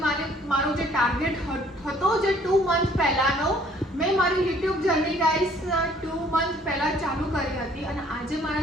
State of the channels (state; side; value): normal; both; correlation 0.59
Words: મારો જે ટાર્ગેટ હતો જે 2 મંથ પહેલાનો, મેં મારી YouTube જર્ની ગાઈસ 2 મંથ પહેલા ચાલુ કરી હતી અને આજે